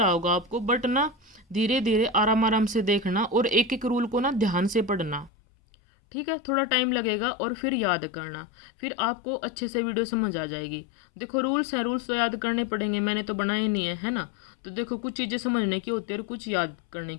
होगा आपको, बट ना धीरे धीरे आराम आराम से देखना और एक एक रूल को ना ध्यान से पढ़ना, ठीक है। थोड़ा टाइम लगेगा और फिर याद करना, फिर आपको अच्छे से वीडियो समझ आ जाएगी। देखो रूल्स हैं, रूल्स तो याद करने पड़ेंगे, मैंने तो बनाए नहीं है ना। तो देखो कुछ चीज़ें समझने की होती है और कुछ याद करने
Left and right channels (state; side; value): drops out; right; at 5.3 s